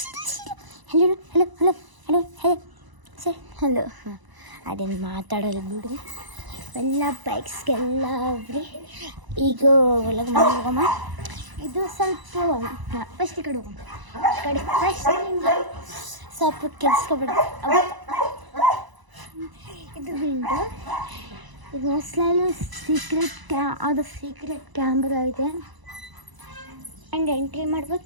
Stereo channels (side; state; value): left; late; 1.0 ms